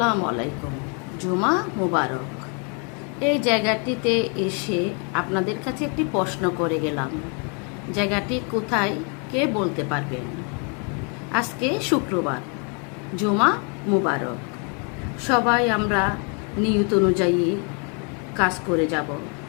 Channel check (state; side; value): quieter; right; 37.0 dB